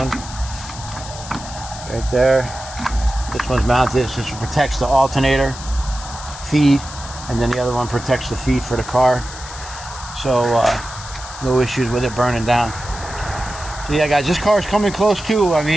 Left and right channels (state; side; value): noise; left; hiss, 13 dB below the sound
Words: Right there. This one's mounted. This protects the alternator feed, and then the other one protects the feed for the car. So no issues with it burning down. So yeah, guys, this car is coming close too. I